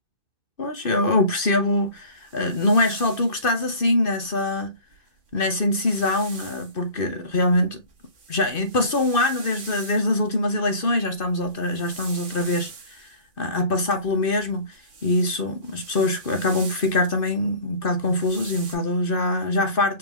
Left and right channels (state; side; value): late; right; 2.6 ms